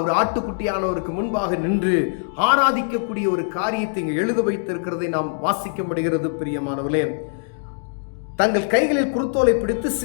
ஆட்டுக்குட்டியானவருக்கு முன்பாக நின்று ஆராதிக்கக்கூடிய ஒரு காரியத்தை இங்கு எழுத வைத்திருக்கிறதை நாம் வாசிக்க முடிகிறது. பிரியமானவர்களே, தங்கள் கைகளில் குருத்தோலை பிடித்து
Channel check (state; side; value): silent; right; digital silence